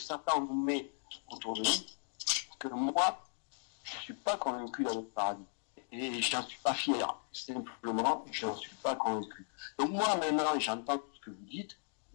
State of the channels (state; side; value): silent; right; 53 dB below the other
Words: nous met autour de nous, que moi, je ne suis pas convaincu d'aller au paradis. Et je n'en suis pas fier. Simplement, je n'en suis pas convaincu. Donc moi, maintenant, j'entends tout ce que vous dites.